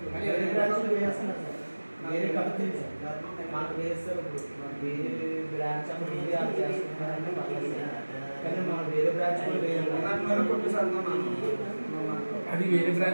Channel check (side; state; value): both; inverted; correlation -1.00